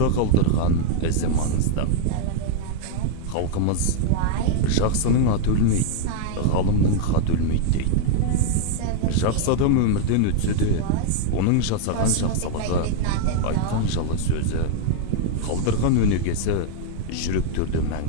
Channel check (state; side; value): different; both; correlation 0.00